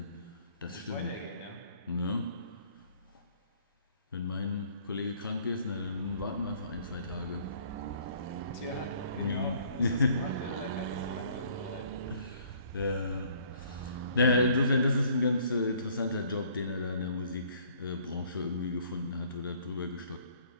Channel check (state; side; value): inverted; both; correlation -0.58